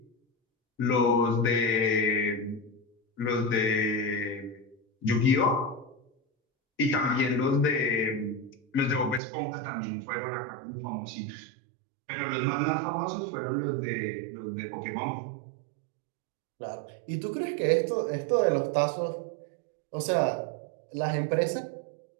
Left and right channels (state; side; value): drops out; left; at 9.2 s